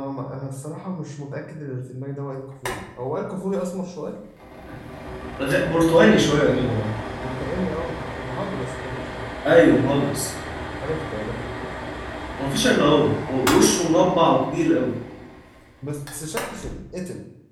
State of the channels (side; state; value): both; identical; correlation 1.00